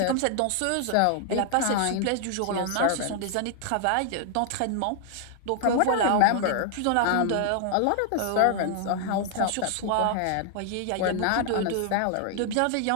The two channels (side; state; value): both; different; correlation -0.01